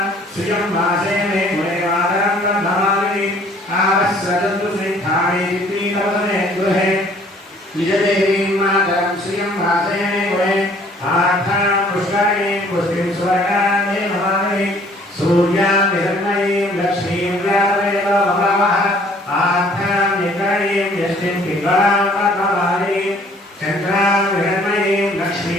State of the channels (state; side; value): normal; both; correlation 0.57